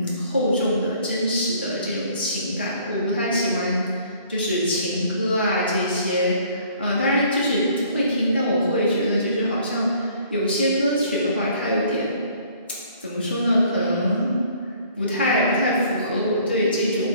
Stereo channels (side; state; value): both; inverted; correlation -0.57